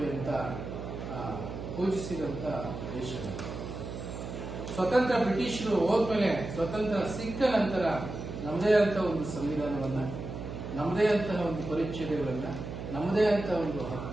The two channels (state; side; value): noise; right; hum, 8 dB below the sound